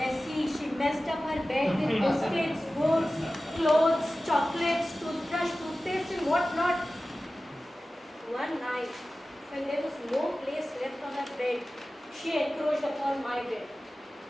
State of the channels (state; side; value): normal; both; correlation 0.96